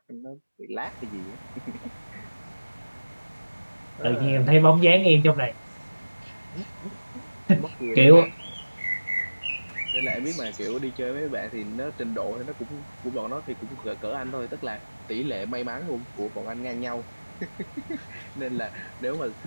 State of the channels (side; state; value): both; inverted; correlation -1.00